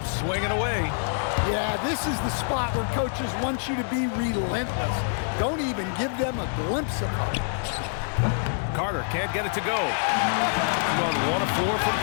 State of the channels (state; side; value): silent; right; digital silence